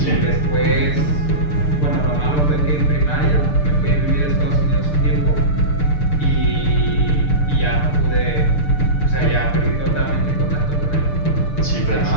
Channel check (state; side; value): late; right; 6.7 ms